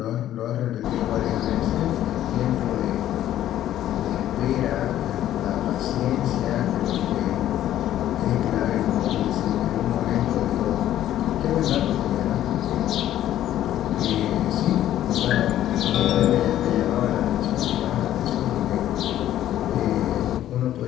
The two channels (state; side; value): quieter; right; 12.4 dB